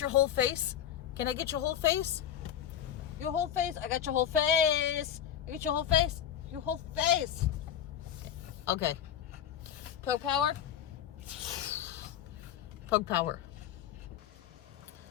whole face? Can I get your whole face? Your whole face? I got your whole face. I get your whole face? Your whole face. Okay. Pug power. Pug power.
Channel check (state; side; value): quieter; right; 10.0 dB